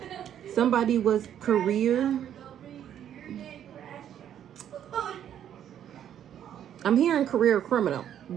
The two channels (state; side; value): quieter; left; 10.1 dB